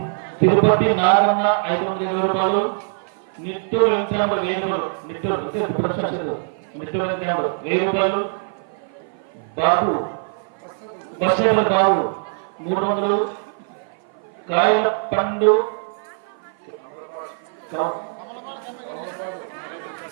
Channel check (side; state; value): left; silent; 55 dB below the other